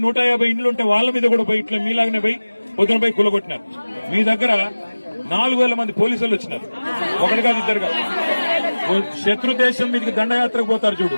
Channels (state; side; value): inverted; both; correlation -1.00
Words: 150 ఇండ్లు ఉంటే వాళ్ళ మీద కూడా పోయి ఇట్లా మీలాగనే పోయి పొద్దున పోయి కూలగొట్టినారు. మీ దగ్గర 4,000 మంది పోలీసులు వచ్చినారు, ఒకటి కాదు ఇద్దరు కాదు. శత్రు దేశం మీదకి దండయాత్రకు పోతారు చూడు,